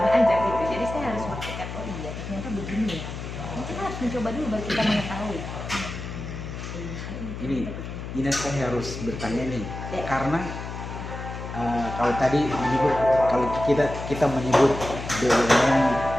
aja gitu. Jadi saya harus berpikir, oh iya ternyata begini ya. Kita harus mencoba dulu baru kita mengetahui. Ini saya harus bertanya nih, karena kalau tadi menyebut, kalau kita menyebut BUMN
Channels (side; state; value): left; noise; hum, 8 dB below the sound